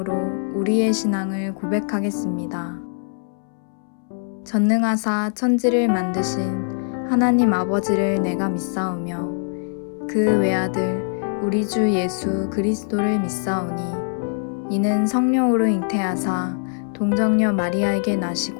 우리의 신앙을 고백하겠습니다. 전능하사 천지를 만드신 하나님 아버지를 내가 믿사오며 그 외아들 우리 주 예수 그리스도를 믿사오니 이는 성령으로 잉태하사 동정녀 마리아에게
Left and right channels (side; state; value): right; silent; 64 dB below the other